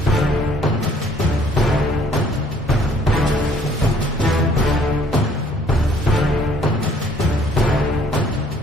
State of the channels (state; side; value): normal; both; correlation 0.61